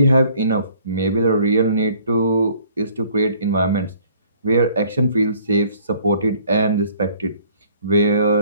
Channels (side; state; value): both; inverted; correlation -0.58